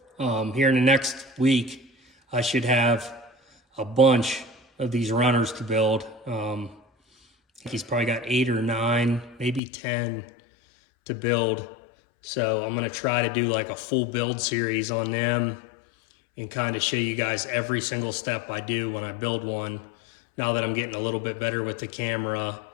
Here in the next week, I should have a bunch of these runners to build. I think he's probably got 8 or 9, maybe 10 to build. So I'm gonna try to do like a full build series on them and kind of show you guys every single step I do when I build one, now that I'm getting a little bit better with the camera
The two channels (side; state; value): right; drops out; at 9.6 s